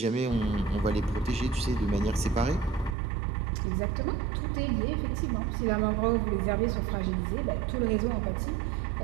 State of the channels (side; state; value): left; drops out; at 3.0 s